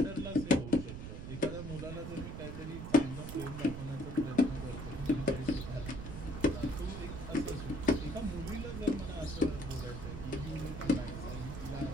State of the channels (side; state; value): right; noise; rumble, 8 dB below the sound